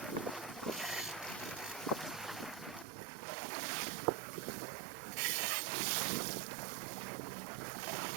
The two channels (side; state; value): left; drops out; at 2.9 s